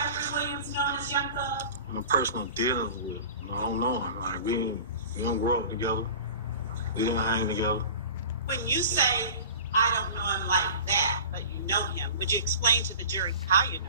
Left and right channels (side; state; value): both; inverted; correlation -0.38